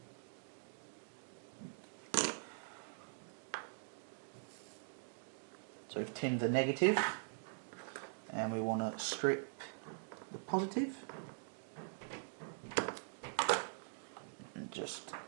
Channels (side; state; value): left; silent; digital silence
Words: So we've tinned the negative and we want to strip the positive and just